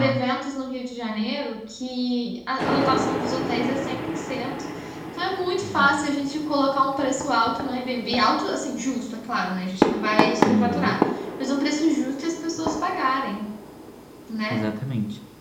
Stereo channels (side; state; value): both; identical; correlation 1.00